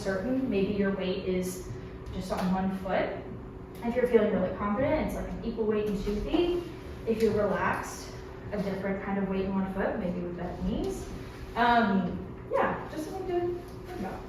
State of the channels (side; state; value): both; identical; correlation 1.00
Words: maybe your weight is just on one foot. If you're feeling really confident, it's like an equal weight in 2 feet. If you're relaxed, a different kind of weight in 1 foot, maybe with bent knees. Yeah, just something to think about.